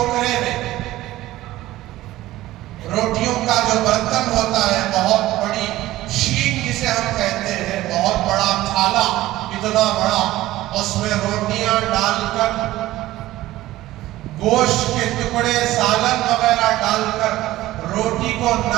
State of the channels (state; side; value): quieter; left; 16.1 dB